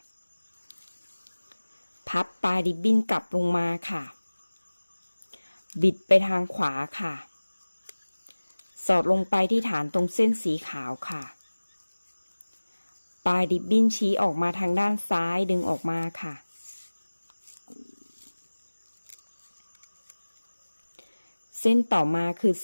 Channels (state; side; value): inverted; both; correlation -1.00